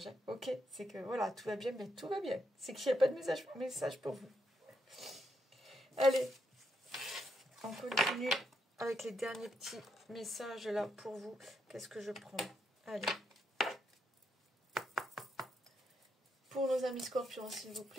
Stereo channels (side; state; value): both; normal; correlation 0.80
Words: Hein. Ok, c'est que voilà, tout va bien, mais tout va bien. C'est qu'il n'y a pas de message pour vous. Allez, on continue avec les derniers petits messages là pour vous. Qu'est-ce que je prends? Allez. Pour nos amis scorpions, s'il vous